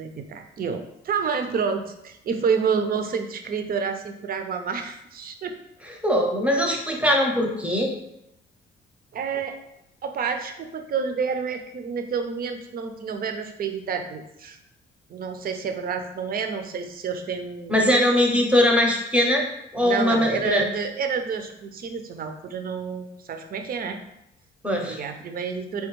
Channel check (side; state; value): both; normal; correlation 0.46